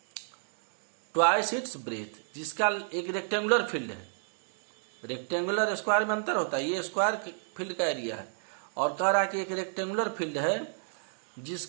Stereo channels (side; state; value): left; silent; digital silence